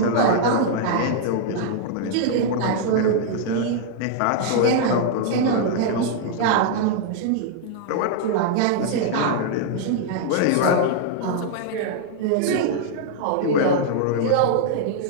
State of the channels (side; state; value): both; different; correlation -0.01